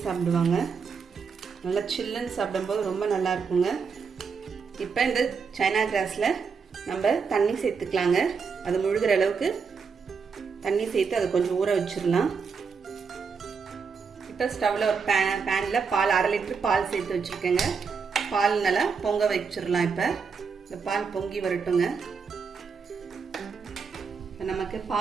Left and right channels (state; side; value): quieter; left; 5.6 dB